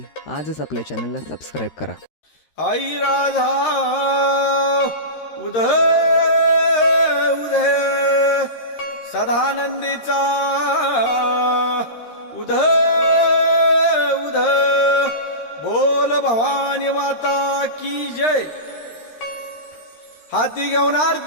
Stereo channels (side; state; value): right; late; 13 ms